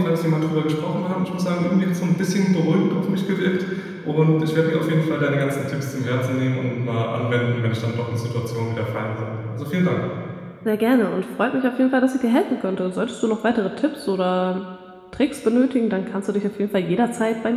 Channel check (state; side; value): identical; both; correlation 1.00